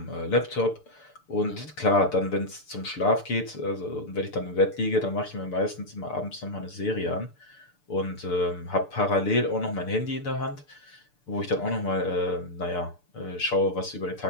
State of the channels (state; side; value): late; right; 6.8 ms